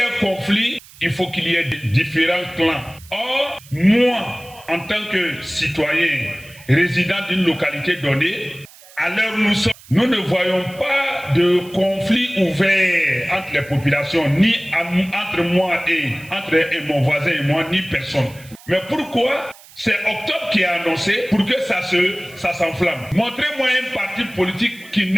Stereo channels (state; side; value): noise; right; hiss, 22 dB below the sound